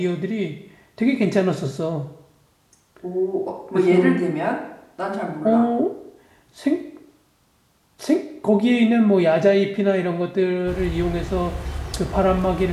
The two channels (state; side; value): identical; both; correlation 1.00